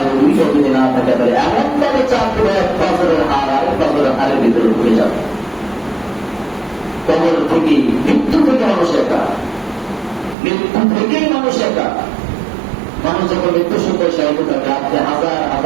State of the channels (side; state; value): left; drops out; at 10.4 s